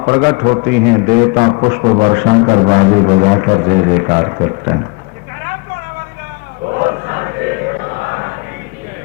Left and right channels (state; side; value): quieter; right; 28.2 dB